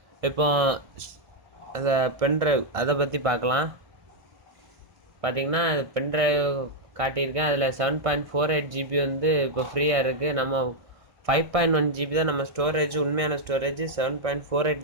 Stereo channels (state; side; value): late; left; 1.3 ms